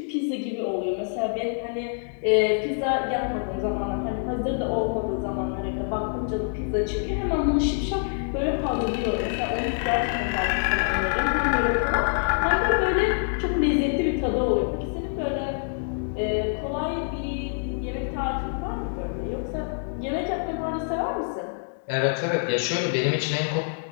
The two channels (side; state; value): right; silent; digital silence